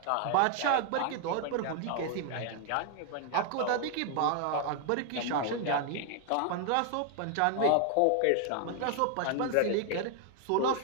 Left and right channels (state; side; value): different; both; correlation 0.00